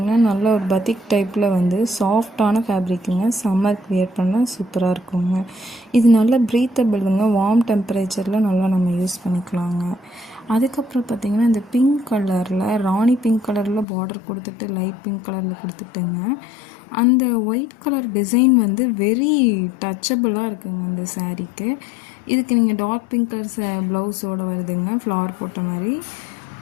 நல்ல ஒரு பத்திக் டைப்பில் வந்து சாஃப்டான ஃபேப்ரிக்குங்க. சம்மருக்கு வியர் பண்ணால் சூப்பராக இருக்குங்க. இது நல்ல ப்ரீத்தபிளுங்க. வார்ம் டெம்பரேச்சரில் நல்லா நம்ம யூஸ் பண்ணிக்கலாங்க. அதுக்கப்புறம் பார்த்திங்கன்னா இந்த பிங்க் கலரில் ராணி பிங்க் கலரில் பார்டர் கொடுத்துட்டு லைட் பிங்க் கலரில் கொடுத்துட்டுங்க. அந்த ஒயிட் கலர் டிசைன் வந்து வெரி டச்சபிளாக இருக்குங்க இந்த சாரீக்கு. இதுக்கு நீங்கள் டார்க் பிங்க் கலர் ப்ளவுஸோடு வருதுங்க, ஃப்ளவர் போட்ட மாதிரி.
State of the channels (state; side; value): drops out; right; at 13.9 s